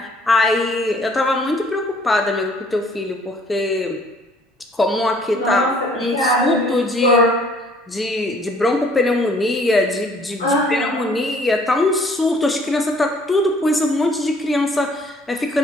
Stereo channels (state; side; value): normal; both; correlation 0.58